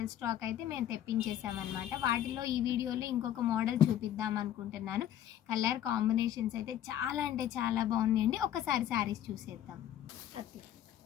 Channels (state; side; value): quieter; right; 11.2 dB